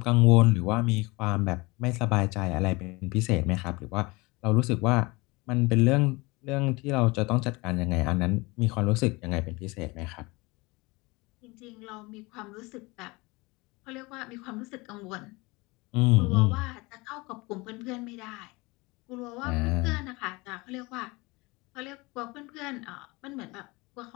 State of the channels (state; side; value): quieter; right; 24.3 dB